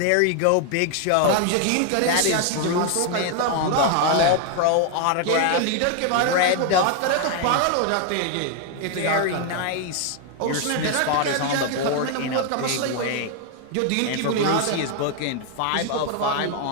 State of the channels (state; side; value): different; both; correlation 0.00